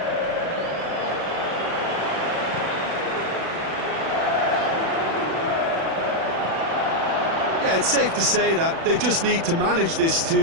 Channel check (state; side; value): late; left; 36 ms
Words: Yeah, it's safe to say that they just need to manage this